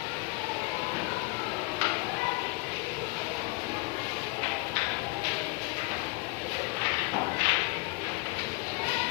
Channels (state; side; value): quieter; right; 26.1 dB